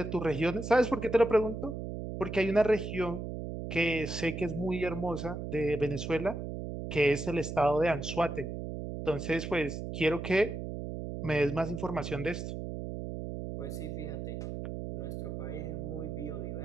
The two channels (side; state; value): right; noise; hum, 6 dB below the sound